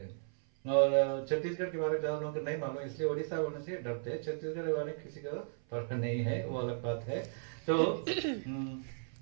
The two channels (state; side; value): silent; left; 54 dB below the other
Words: हैं, और छत्तीसगढ़ के बारे में ज्यादा लोगों को नहीं मालूम, इसलिए उड़ीसा बोलने से डरते हैं। छत्तीसगढ़ के बारे में किसी का पता नहीं है, वो अलग बात है। तो